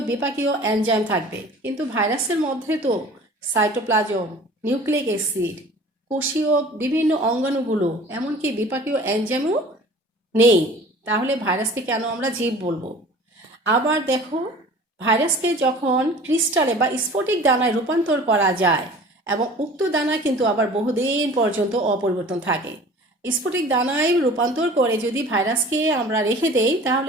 বিপাকীয় এনজাইম থাকবে। কিন্তু ভাইরাসের মধ্যে তো সাইটোপ্লাজম, নিউক্লিক অ্যাসিড, কোষীয় বিভিন্ন অঙ্গাণুগুলো, এমনকি বিপাকীয় এনজাইমও নেই। তাহলে ভাইরাসকে কেন আমরা জীব বলবো? আবার দেখো, ভাইরাসকে যখন ক্রিস্টালে বা স্ফটিক দানায় রূপান্তর করা যায়, এবং উক্ত দানা কিন্তু আবার বহুদিন পর্যন্ত অপরিবর্তন থাকে। স্ফটিক দানায় রূপান্তর করে যদি ভাইরাসকে আমরা রেখে দেই,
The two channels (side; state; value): both; normal; correlation 0.45